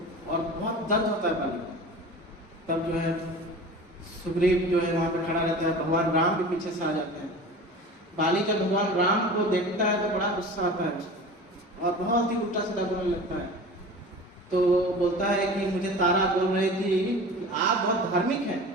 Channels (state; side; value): normal; both; correlation 0.36